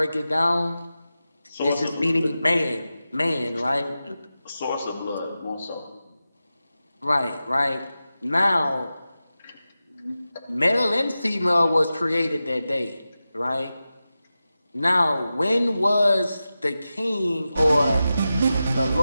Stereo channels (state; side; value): inverted; both; correlation -0.93